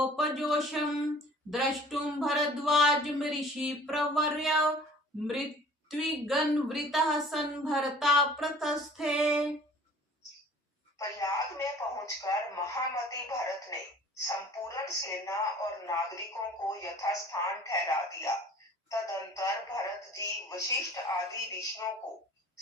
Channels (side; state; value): both; normal; correlation 0.49